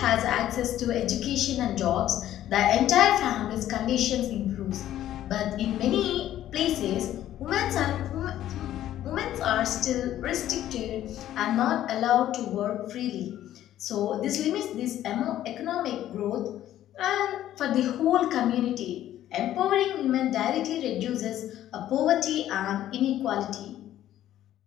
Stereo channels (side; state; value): right; quieter; 12.5 dB